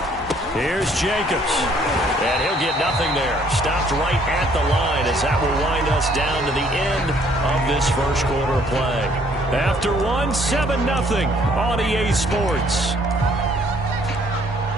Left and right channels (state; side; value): normal; both; correlation 0.62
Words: Here's Jacobs. And he'll get nothing there. Stopped right at the line as that will wind us down to the end of this first quarter of play. After 7-0 on EA Sports.